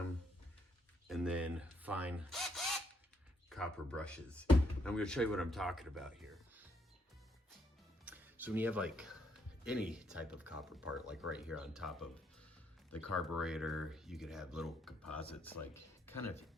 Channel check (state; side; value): normal; both; correlation 0.73